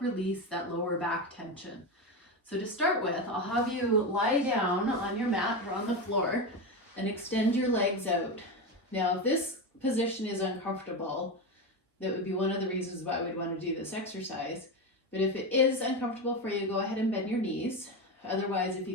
release that lower back tension. So to start with, I'll have you lie down on your mat or on the floor and extend your legs out. Now, if this position is uncomfortable, that would be one of the reasons why we'd want to do this exercise. But if it is uncomfortable for you, go ahead and bend your knees. Otherwise, if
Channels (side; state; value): both; normal; correlation 0.16